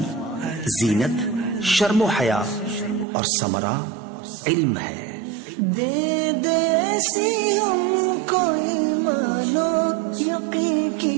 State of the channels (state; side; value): drops out; left; at 3.1 s